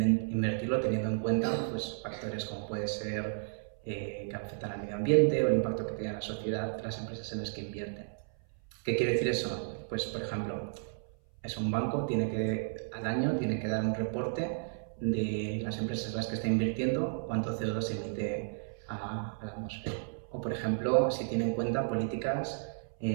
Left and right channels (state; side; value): silent; left; 56 dB below the other